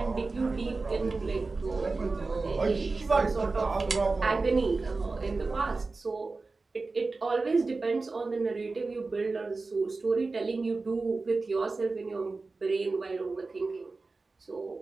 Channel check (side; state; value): left; quieter; 3.8 dB